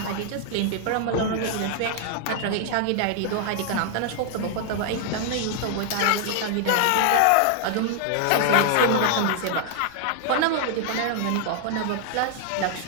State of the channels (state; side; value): different; both; correlation 0.00